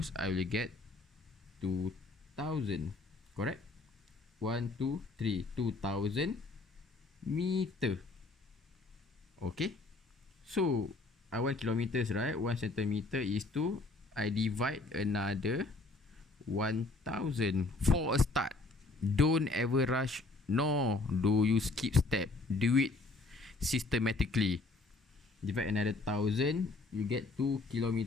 I will get 2000. Correct? 1, 2, 3. 2000 meter. Okay? So, I want kilometers, right? 1 centimeter is to, I divide another 1000 for a start. Don't ever rush, nor do you skip step. Do it systematically. Divide another 1000, you get 2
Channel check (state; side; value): quieter; right; 3.4 dB